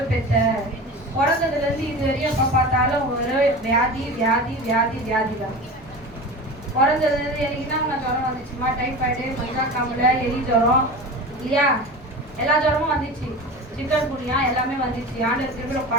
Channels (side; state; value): both; normal; correlation 0.31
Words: பெற்ற? பிறந்ததுல இருந்து இது வரையும் எப்ப பார்த்தாலும் ஒரு வியாதி வியாதி வியாதி வியாதி தான். பிறந்ததுல இருந்து எனக்கு என்ன ஜுரம் வந்துச்சுமா, டைஃபாய்டு, மஞ்சா காமல, எலி ஜுரம் இல்லையா, எல்லா ஜுரமும் வந்துச்சு, சிக்கன் குனியா எல்லாமே வந்துச்சு. ஆண்டவர் திருவிழா